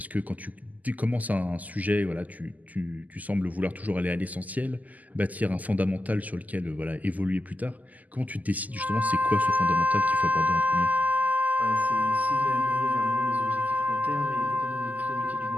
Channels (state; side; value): late; left; 0.079 ms